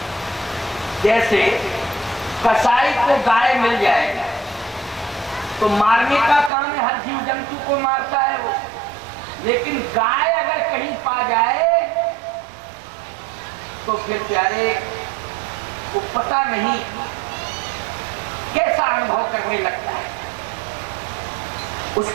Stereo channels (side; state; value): left; drops out; at 6.5 s